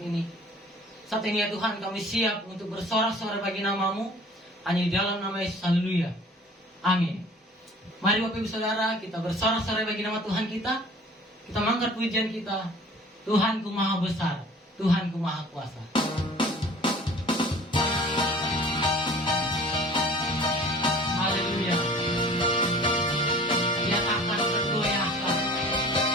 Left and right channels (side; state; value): both; normal; correlation 0.48